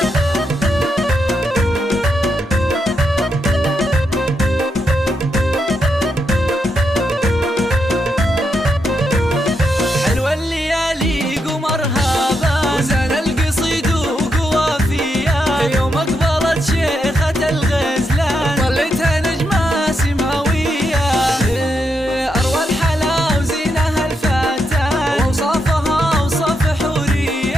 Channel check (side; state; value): both; normal; correlation 0.82